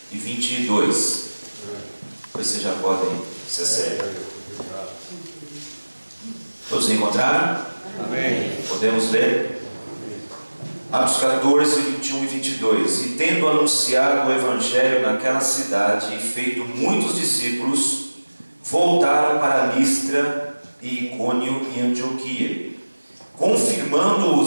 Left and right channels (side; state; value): both; inverted; correlation -1.00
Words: e 22. Vocês já podem se acertar. Todos encontraram? Amém. Podemos ler? Atos 14, 21 e 22. E tendo anunciado o Evangelho naquela cidade e feito muitos discípulos, voltaram para Listra e Icônio e Antioquia, confirmando